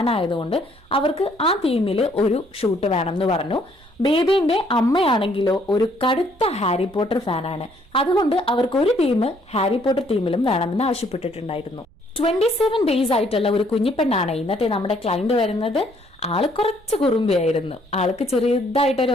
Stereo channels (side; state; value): right; noise; rumble, 28 dB below the sound